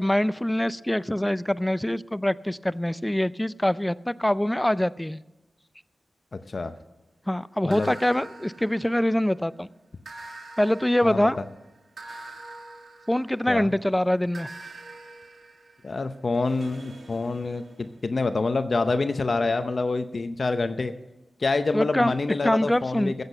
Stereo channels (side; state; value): both; normal; correlation 0.98